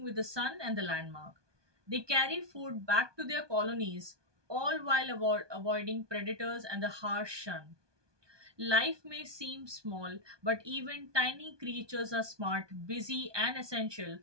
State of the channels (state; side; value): late; left; 1.2 ms